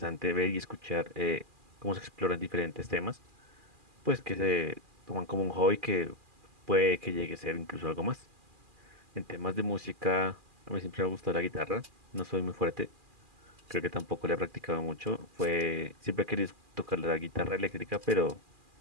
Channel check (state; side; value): late; left; 2.4 ms